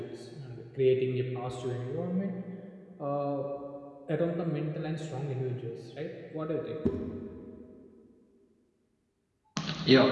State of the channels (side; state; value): both; identical; correlation 1.00